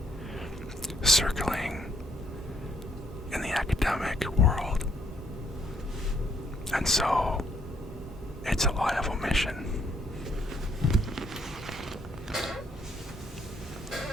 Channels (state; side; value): normal; both; correlation 0.70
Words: circling in the academic world. And so, it's a lie of omission.